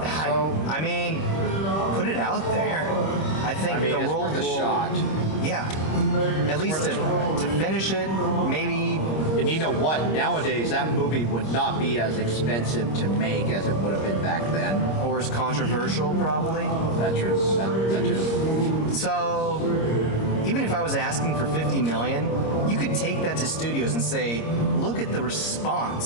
I mean, put it out there. I think the it's world worth a will, shot. Yeah, at least to finish it, maybe. And you know what? Nowadays, that movie would not be as expensive to make as it would have been back then. Or as controversial, probably. That's true. That too. So, even if I was asking for $50 million, you could take that to studios and say, "Look at the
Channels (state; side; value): late; right; 26 ms